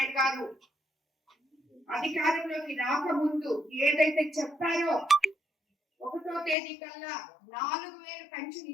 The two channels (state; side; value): drops out; right; at 6.6 s